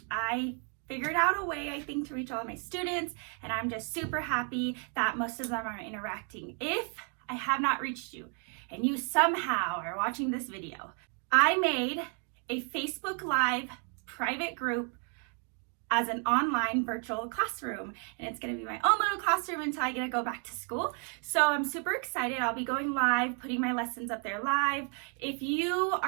I figured out a way, I think, to reach all of my students, and I'm just super happy that most of them are interacting. If I have not reached you and you somehow are watching this video, I made a Facebook Live private group as an online virtual classroom, and it's going to be my own little classroom until I get to go back to school. So I'm super excited. I'll be going live, putting my lessons up there live. If you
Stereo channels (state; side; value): quieter; left; 38.4 dB